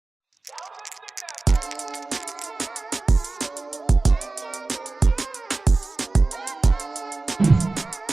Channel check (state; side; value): quieter; left; 3.3 dB